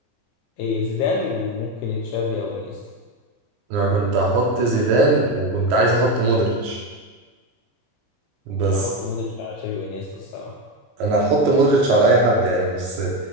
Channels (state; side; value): normal; both; correlation 0.12